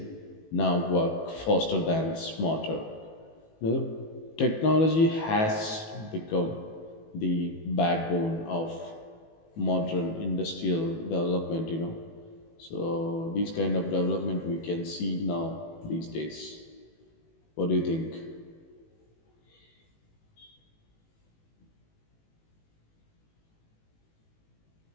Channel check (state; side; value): late; right; 18 ms